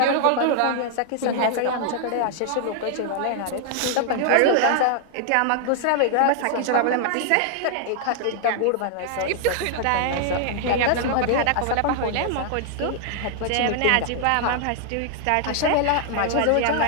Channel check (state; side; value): different; both; correlation 0.00